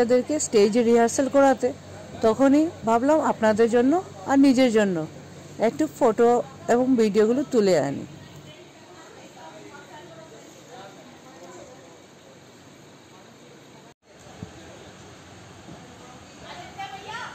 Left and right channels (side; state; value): both; identical; correlation 1.00